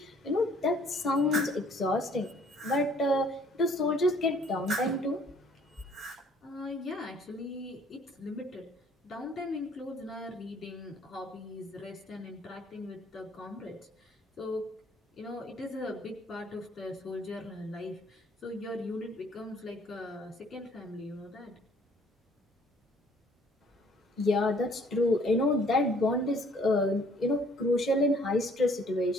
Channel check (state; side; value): normal; both; correlation 0.59